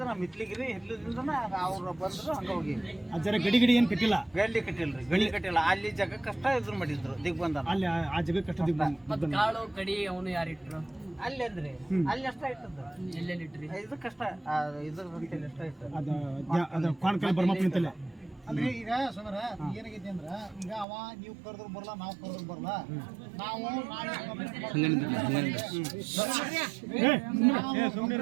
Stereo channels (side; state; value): left; drops out; at 20.9 s